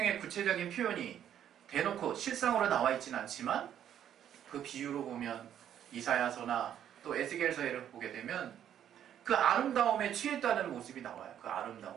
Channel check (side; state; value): left; quieter; 10.1 dB